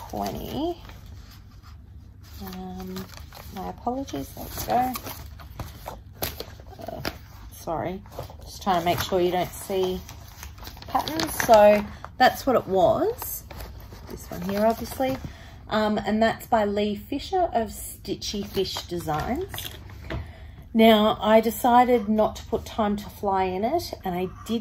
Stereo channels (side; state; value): both; identical; correlation 1.00